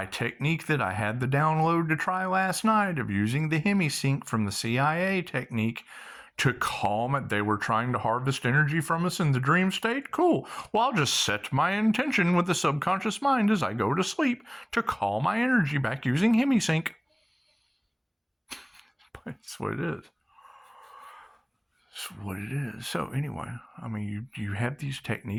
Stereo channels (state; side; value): identical; both; correlation 1.00